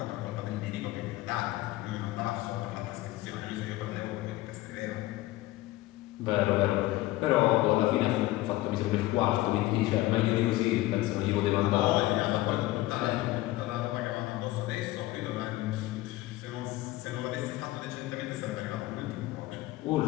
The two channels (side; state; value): right; quieter; 17.7 dB